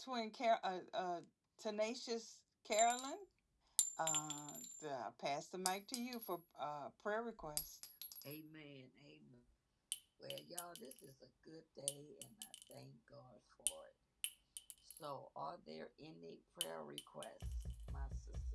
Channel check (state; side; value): identical; both; correlation 1.00